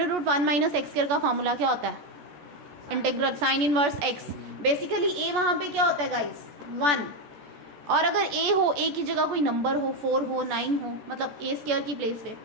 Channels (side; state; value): left; late; 14 ms